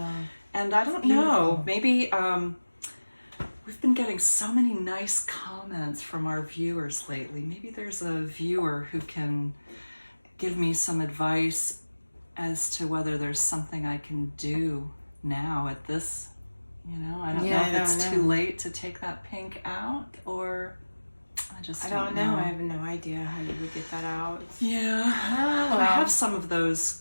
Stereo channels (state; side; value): inverted; both; correlation -1.00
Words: And I don't know, maybe we've been getting so many nice comments from our viewers lately. Maybe there's a viewer who can give me some advice as to whether there's something I can do now at this, I don't know if it's too late to take that pink out, or I don't know. I have no idea how you would get that out. Yeah. I have some of those